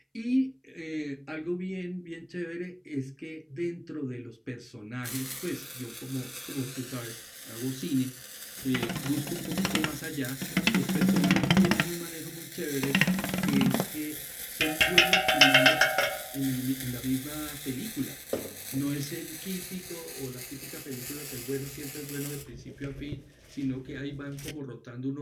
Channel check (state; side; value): identical; both; correlation 1.00